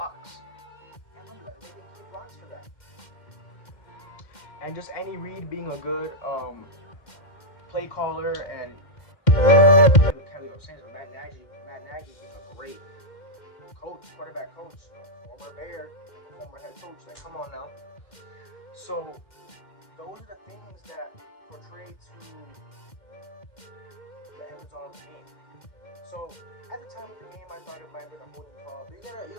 They're making key blocks for that. And just Andy Reid being a good play caller and Matt Nagy being a great coach, quarterback coach, former Bear, former head coach. Like, come on now. So those are the things that portray to the end result of the game. So at the time of the game, I thought it might have been a holding call, but you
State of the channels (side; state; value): right; late; 2.1 ms